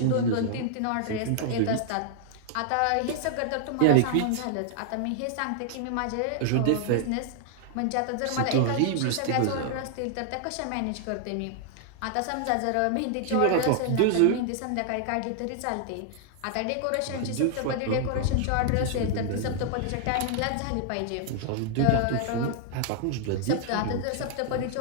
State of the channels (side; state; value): both; different; correlation -0.01